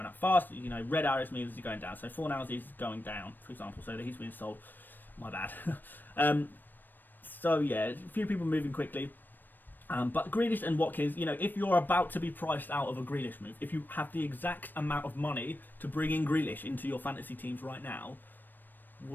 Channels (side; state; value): right; late; 0.091 ms